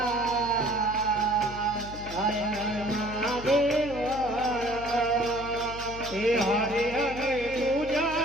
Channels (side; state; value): left; noise; hum, 13 dB below the sound